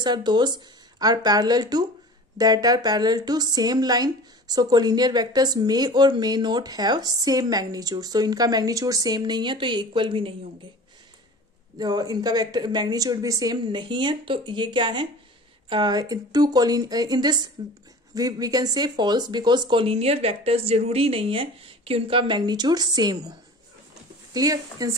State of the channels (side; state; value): both; normal; correlation 0.39